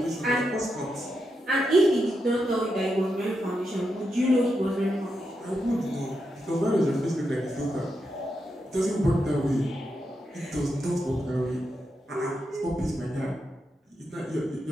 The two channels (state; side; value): normal; both; correlation 0.85